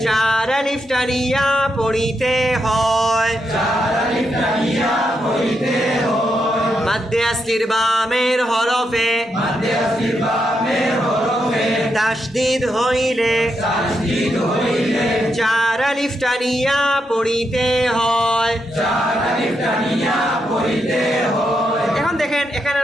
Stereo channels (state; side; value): normal; both; correlation 0.82